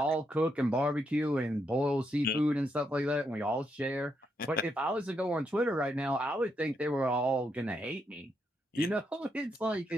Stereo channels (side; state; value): both; normal; correlation 0.79